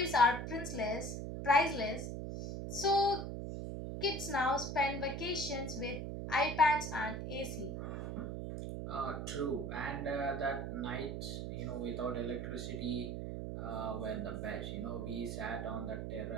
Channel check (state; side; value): noise; right; hum, 4 dB below the sound